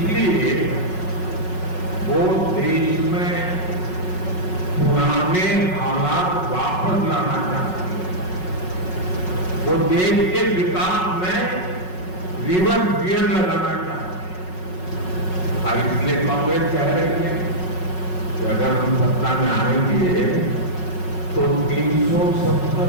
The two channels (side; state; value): right; late; 5.4 ms